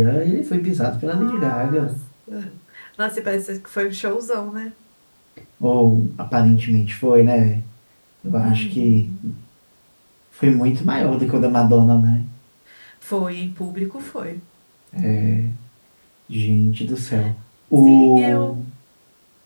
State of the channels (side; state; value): both; inverted; correlation -1.00